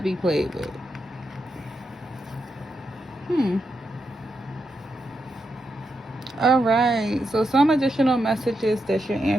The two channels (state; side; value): normal; both; correlation 0.84